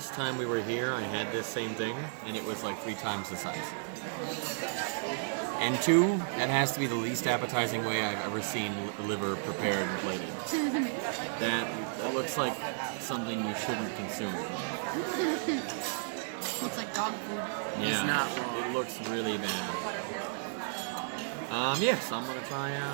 time we were here, I had this same thing, and it was like 3 times the size. And two, that has to be the least appetizing way I've ever seen liver prepared and plated. That looks like something you shouldn't consume. It's like dog food. Yeah, It's not wrong. it looks really bad. Yes, I'm gonna try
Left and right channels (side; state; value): left; silent; 56 dB below the other